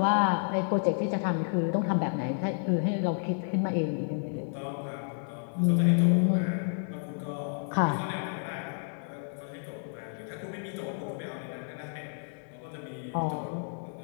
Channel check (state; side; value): silent; right; digital silence